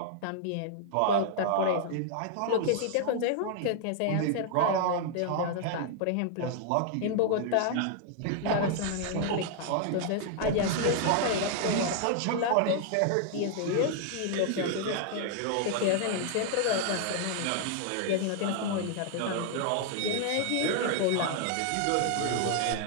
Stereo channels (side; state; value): both; different; correlation 0.00